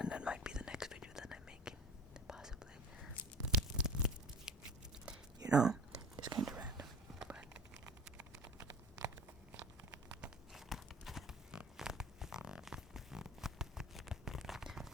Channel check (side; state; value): both; normal; correlation 0.37